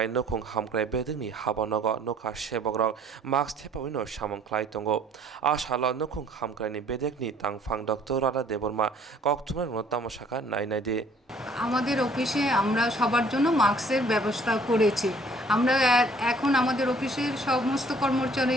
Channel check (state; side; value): normal; both; correlation 0.58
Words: nokhong hamkrai bedingni habonogo nokha sebogrok max thepawino samongklai tongo asala nokhong hamkraini bedekni tangfang dr rada deborma koktumar notamosaka nainade আমাদের অফিসে আমরা সবার জন্য মাস্কের ব্যবস্থা করেছি। আমরা এখন আমাদের অফিসের সমস্ত